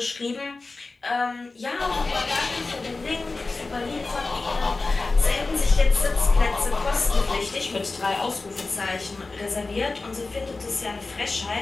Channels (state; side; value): quieter; right; 3.6 dB